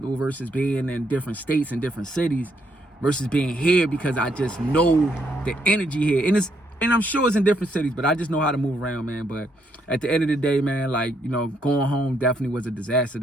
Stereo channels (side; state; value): both; normal; correlation 0.74